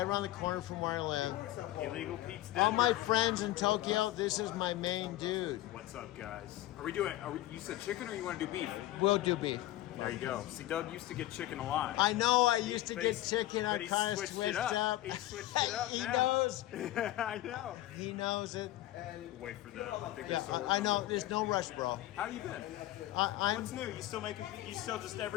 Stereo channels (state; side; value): quieter; right; 15.7 dB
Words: around the corner from where I live. Illegal Pete's Denver. All my friends in Tokyo, this is my main dude. What's up, guys? You said chicken or you want to do beef? We'll do beef. There you go. See, Doug used to get chicken a lot. I know I used to But get he's- chicken, but I he kind of switched switched it up. He switched it up He now. knows. I know. He knows it. Wait for the. I think Yeah, there's I know, there's no rush, bro. How you been? I'm What's new? You still just